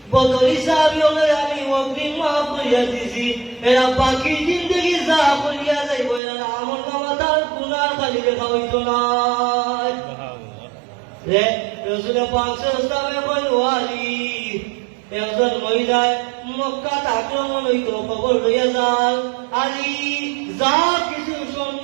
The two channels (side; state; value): left; drops out; at 6.2 s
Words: বদরি সাহাবী হলে আমি ওকে মাফ করিয়া দিছি, এরা বাকি জিন্দগি যা করিয়া যাইব এরা আমল নামা তার গুনাহ খালি লেখা হইত না। রাসূল পাক সাল্লাল্লাহু আলাইহি ওয়াসাল্লাম একজন মহিলায় মক্কাত আক্রমণ হইত, খবর লইয়া যান আলী যা কিছু স্বর্ণ